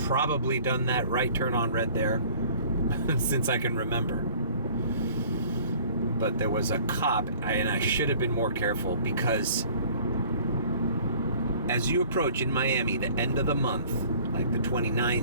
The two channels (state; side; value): inverted; both; correlation -0.52